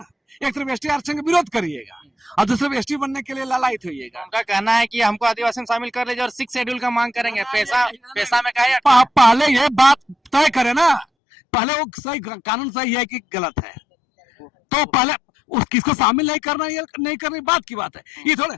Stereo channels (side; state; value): right; drops out; at 11.1 s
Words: एक तरफ एसटी आरक्षण का विरोध करिएगा और दूसरे तरफ एसटी बनने के लिए लालायित होइएगा। उनका कहना है कि हमको आदिवासी में शामिल कर लीजिए और 6 शेड्यूल का मांग करेंगे। पैसा में कहा, पहले ये बात तय करे ना, पहले वो सही कानून सही है कि गलत है, तो पहले किसको शामिल नहीं करना, ये नहीं करनी बात की बात है। ये थोड़े